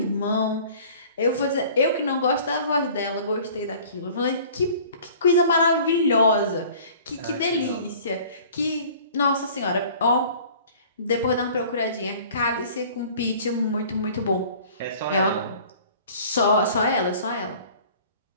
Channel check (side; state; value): both; inverted; correlation -0.48